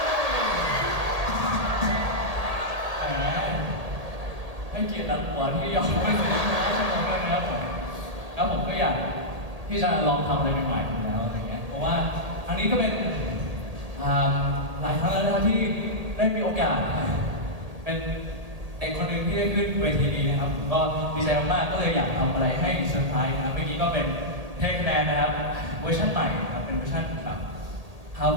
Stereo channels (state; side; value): late; left; 1.8 ms